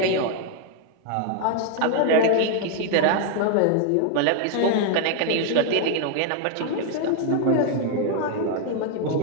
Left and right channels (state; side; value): different; both; correlation 0.00